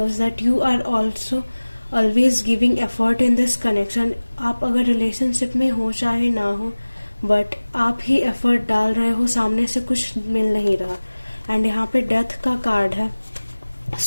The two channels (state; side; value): inverted; both; correlation -1.00